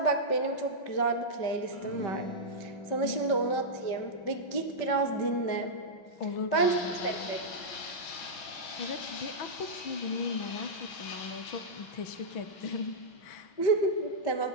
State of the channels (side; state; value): right; late; 5.2 ms